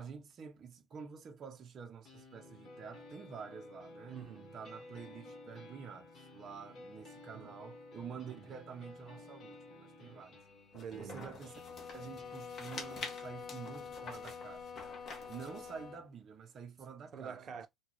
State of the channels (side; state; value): both; normal; correlation 0.64